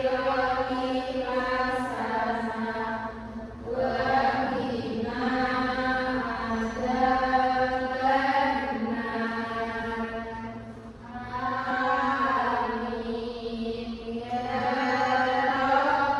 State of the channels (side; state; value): both; identical; correlation 1.00